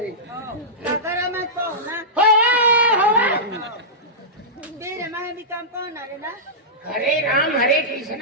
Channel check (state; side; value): normal; both; correlation -0.14